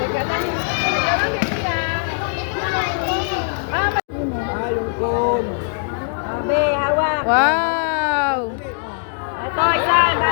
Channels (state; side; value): silent; right; digital silence